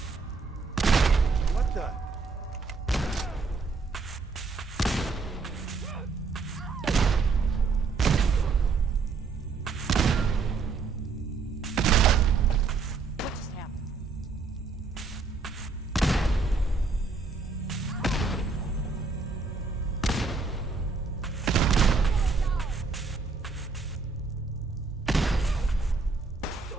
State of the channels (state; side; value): quieter; left; 4.5 dB